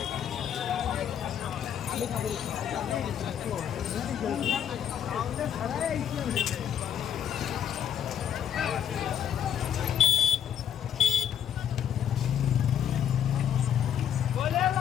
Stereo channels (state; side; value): quieter; right; 9.5 dB